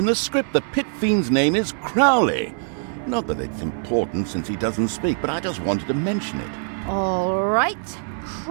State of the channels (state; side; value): silent; left; 64 dB below the other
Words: the script the Pit Fiend's name is Crowley. Not that it's important since he doesn't speak, but I just wanted to mention it. All right,